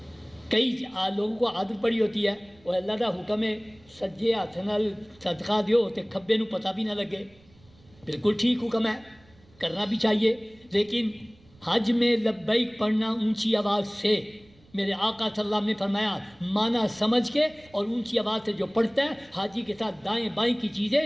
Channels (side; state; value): right; noise; rumble, 29 dB below the sound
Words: کئی لوگوں کو عادت پڑی ہوتی ہے وہ اللہ کا حکم ہے سجے ہاتھ نال صدقہ دیو تے کھبے نو پتہ بھی نہ لگے. بالکل ٹھیک حکم ہے، کرنا بھی چاہیے، لیکن حج میں لبیک پڑھنا اونچی آواز سے، میرے آقا صلی اللہ علیہ وسلم نے فرمایا معنی سمجھ کے اور اونچی آواز سے جو پڑھتا ہے حاجی کے ساتھ دائیں بائیں کی چیزیں،